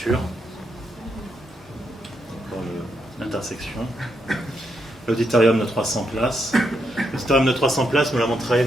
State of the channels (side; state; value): both; normal; correlation 0.80